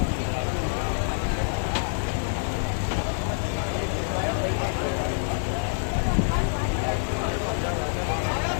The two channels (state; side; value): silent; right; digital silence